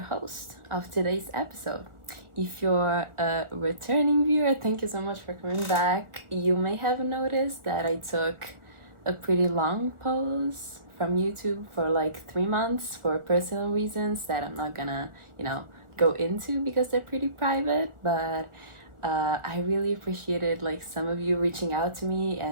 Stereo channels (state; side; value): late; left; 1.4 ms